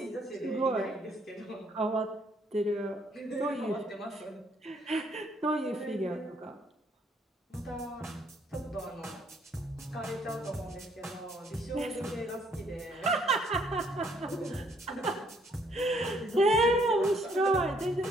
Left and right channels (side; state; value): both; normal; correlation 0.67